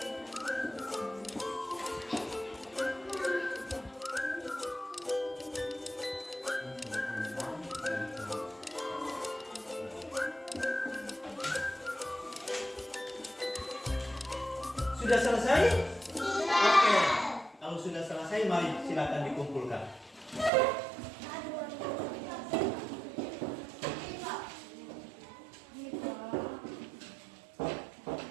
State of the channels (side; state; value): left; drops out; at 20.5 s